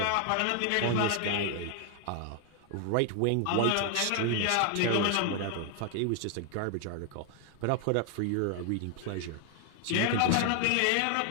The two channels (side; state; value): both; different; correlation 0.00